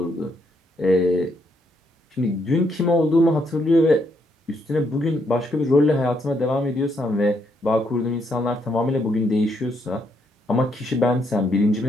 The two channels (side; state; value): both; normal; correlation 0.75